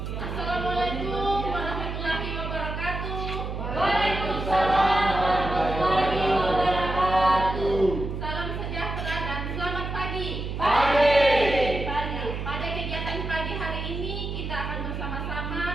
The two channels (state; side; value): noise; right; hum, 5 dB below the sound